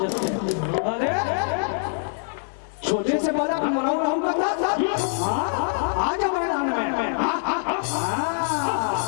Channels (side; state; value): right; silent; digital silence